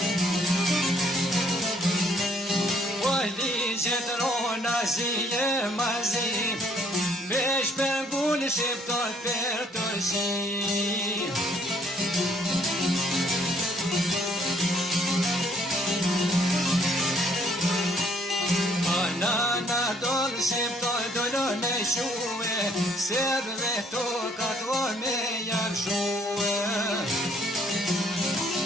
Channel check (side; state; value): both; normal; correlation 0.64